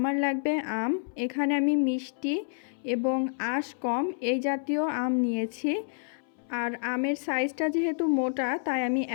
লাগবে আম। এখানে আমি মিষ্টি এবং আঁশ কম এই জাতীয় আম নিয়েছি। আর আমের সাইজটা যেহেতু মোটা তাই আমি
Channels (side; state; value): right; silent; 59 dB below the other